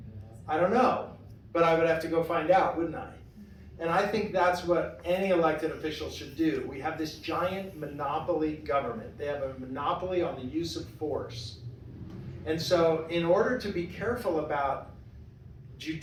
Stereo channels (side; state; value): both; identical; correlation 1.00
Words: don't know, but I would have to go find out, wouldn't I? And I think that's what any elected official should do. We have this giant monopoly government. They have a monopoly on the use of force. And so in order to be careful about